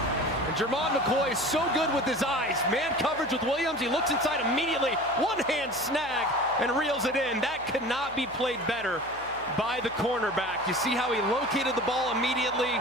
And Jermon McCoy is so good with his eyes. Man coverage with Williams. He looks inside immediately. One-hand snag and reels it in. That could not be played better by the cornerback. You see how he located the ball immediately,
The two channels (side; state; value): left; noise; hum, 22 dB below the sound